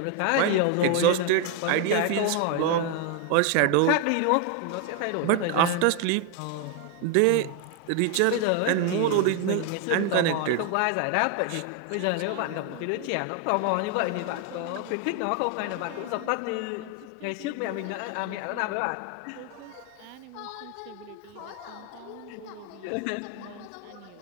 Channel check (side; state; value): both; different; correlation 0.01